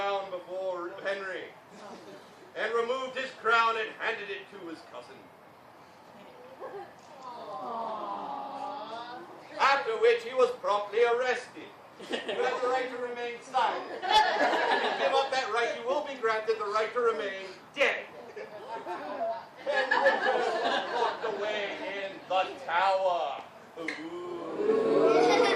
before Henry and removed his crown and handed it to his cousin. After which he was promptly arrested. You have the right to remain silent. If you give up that right, you will be granted the right to remain dead. And Richard was locked away in the tower. Ooh.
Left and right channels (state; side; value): identical; both; correlation 1.00